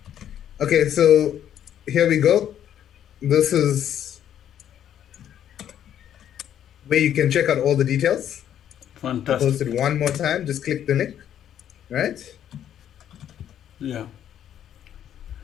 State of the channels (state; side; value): quieter; right; 10.2 dB